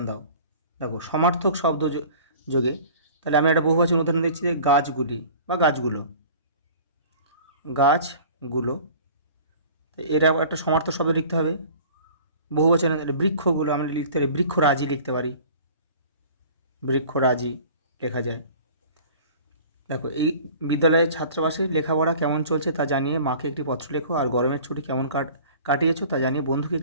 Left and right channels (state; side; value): inverted; both; correlation -0.45